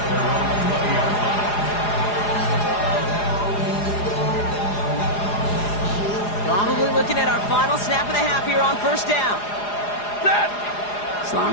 Probably looking at our final snap of the half here on 1st down.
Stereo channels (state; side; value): late; right; 4.9 ms